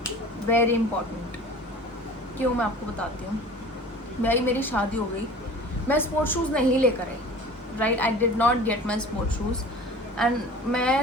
Very important. क्यों, मैं आपको बताती हूँ. मेरी शादी हो गई, मैं स्पोर्ट शूज़ नहीं लेकर आई, right. I did not get my sport shoes. And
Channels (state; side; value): normal; both; correlation 0.42